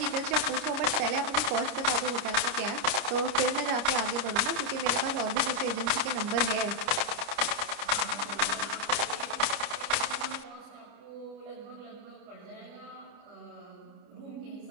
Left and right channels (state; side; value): late; left; 29 ms